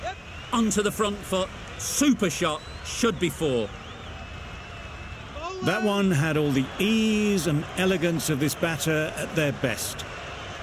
Onto the front foot. Super shot. Should be 4. That one had all the ease and elegance of this batter at their best.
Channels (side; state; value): both; identical; correlation 1.00